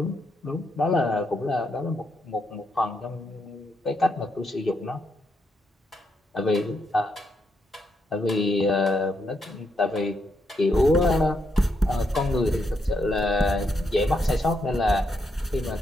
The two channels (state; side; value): normal; both; correlation 0.79